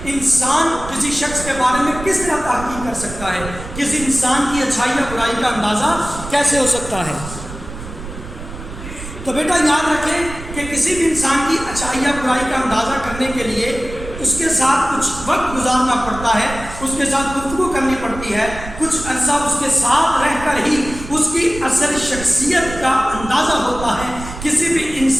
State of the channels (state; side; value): noise; right; rumble, 12 dB below the sound